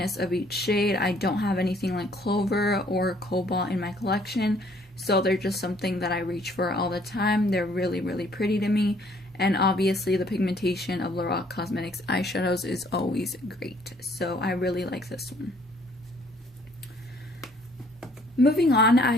of each shade. I don't have anything like Clover or Cobalt in my collection, so they're just something that I reach for all the time. They're really pretty to me, and obviously the pigmentation of Lorac Cosmetics eyeshadows is always great, so I really like this one. Moving on, I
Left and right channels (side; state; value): both; normal; correlation 0.61